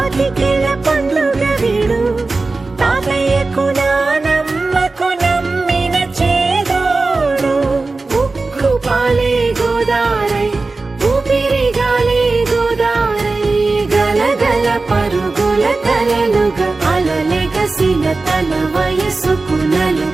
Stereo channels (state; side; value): quieter; left; 3.6 dB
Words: పండుగ వీడు తాతయ్యకు నానమ్మకు నమ్మిన చేదోడు ఉక్కు పాలే గోదారై ఊపిరిగాలే గోదారై గలగల పరుగుల కలలుగా అలలెగసిన తన వయసుకు నలు